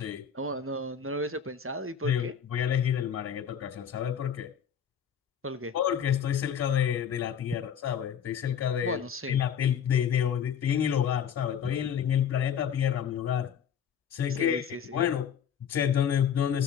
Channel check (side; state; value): right; quieter; 8.0 dB